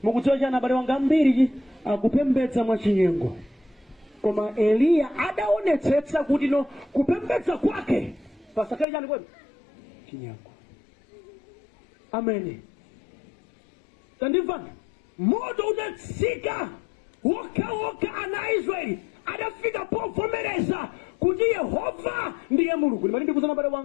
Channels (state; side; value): drops out; right; at 8.8 s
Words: Mukudziwa chana abale wanga ambiri akupembedza mwa chinyengo koma Eliya adaonetsetsa kuti no kupembedza kwake pasakale chani kwenu chinyengo. Amene tandimvani moto udatsika woka ana Israeli adafika povomereza kuti Yehova ndiye Mulungu. Ndimati ndikuzana abale